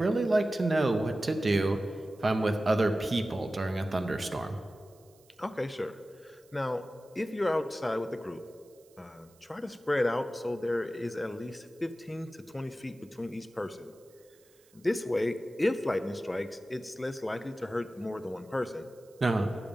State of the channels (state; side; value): noise; right; hiss, 30 dB below the sound